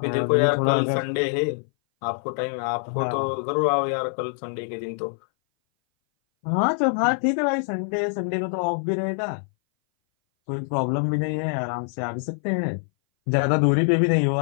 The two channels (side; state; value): right; silent; 59 dB below the other